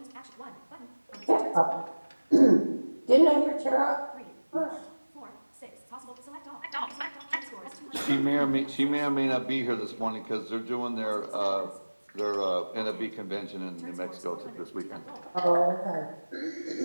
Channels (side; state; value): both; inverted; correlation -1.00